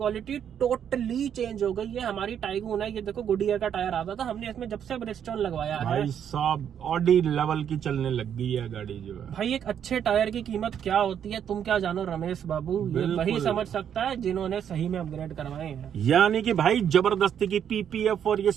टोटली चेंज हो गई है। हमारी टाइगून है, ये देखो गुडियर का टायर आता था, हमने इसमें जब से ब्रिजस्टोन लगवाया है भाई साहब ऑडी लेवल की चलने लग गई है गाड़ी जो है। भाई एक अच्छे टायर की कीमत क्या होती है तुम क्या जानो रमेश बाबू, ये वही समझ सकता है जिन्होंने सही में अपग्रेड करवाए हैं। यानी कि भाई जबरदस्ती की पीपीएफ और ये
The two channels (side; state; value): left; quieter; 8.8 dB